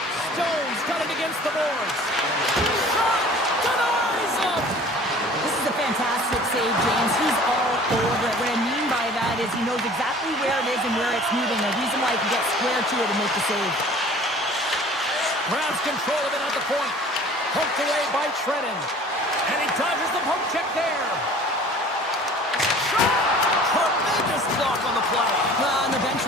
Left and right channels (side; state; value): both; normal; correlation 0.47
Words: Stones got it against the boards. Shot! Denies him! This is a fantastic save, James. He's all over it. What I mean by that is he knows exactly where it is and where it's moving. A reason why he can get square to it and make the save. Grabs control of it at the point. Poked away by Trennan. And he dodges the poke check there. Shot! Tremendous block on the play. And the bench